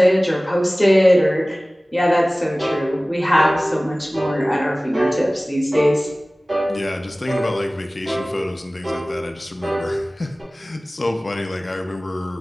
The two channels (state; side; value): normal; both; correlation 0.98